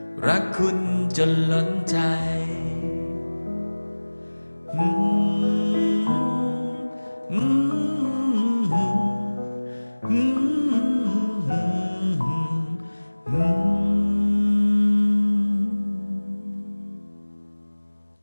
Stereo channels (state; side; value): inverted; both; correlation -1.00